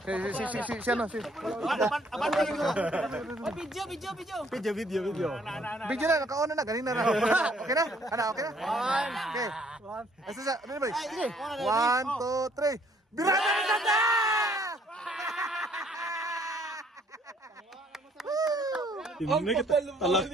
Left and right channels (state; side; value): normal; both; correlation 0.63